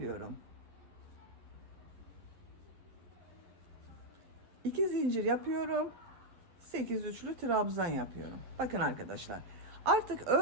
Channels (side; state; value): left; late; 11 ms